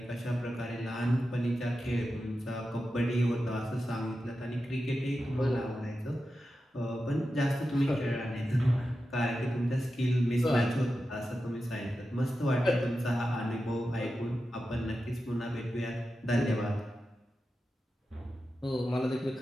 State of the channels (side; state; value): both; normal; correlation 0.91